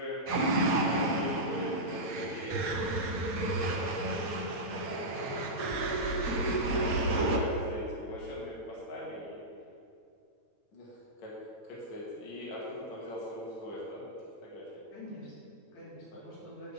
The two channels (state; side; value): late; right; 9.0 ms